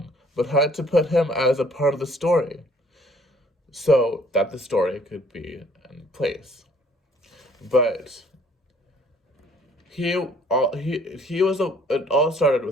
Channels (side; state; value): both; normal; correlation 0.59